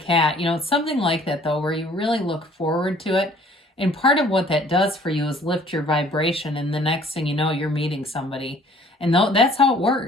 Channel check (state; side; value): normal; both; correlation 0.55